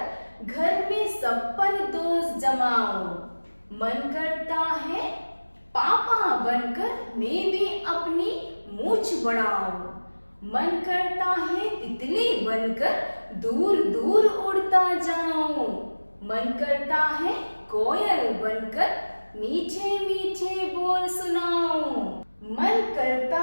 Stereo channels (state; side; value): inverted; both; correlation -1.00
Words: घर में सब पर दोस्त जमाऊं, मन करता है पापा बनकर मैं भी अपनी मूंछ बढ़ाऊं, मन करता है तितली बनकर दूर दूर उड़ता जाऊं, मन करता है कोयल बनकर मीठे मीठे बोल सुनाऊं, मन करता